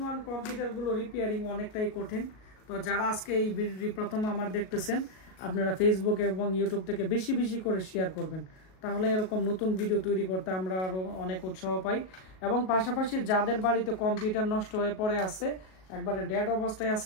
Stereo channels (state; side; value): late; right; 38 ms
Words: ওয়ান কম্পিউটারগুলো রিপেয়ারিং অনেকটাই কঠিন। তো যারা আজকে এই ভিডিওটি প্রথম আমার দেখতেছেন, আপনারা ফেসবুক এবং ইউটিউব থেকে বেশি বেশি করে শেয়ার করবেন, তাহলে এরকম নতুন ভিডিও তৈরি করতে আমরা আরও অনেক উৎসাহ পাই। এবং পাশাপাশি যাদের বাড়িতে কম্পিউটার নষ্ট হয়ে পড়ে আছে, একবারে ডেড অবস্থায়